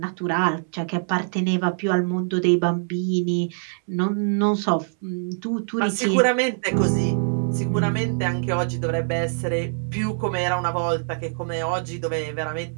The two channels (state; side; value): silent; left; 63 dB below the other